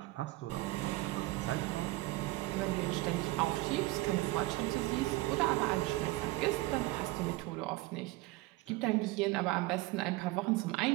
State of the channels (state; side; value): quieter; left; 20.0 dB